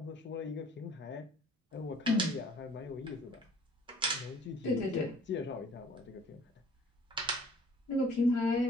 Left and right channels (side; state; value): both; normal; correlation 0.54